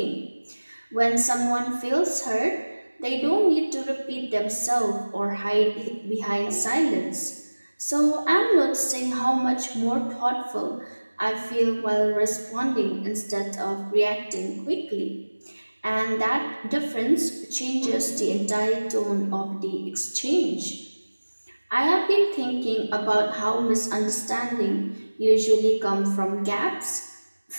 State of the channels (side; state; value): both; inverted; correlation -1.00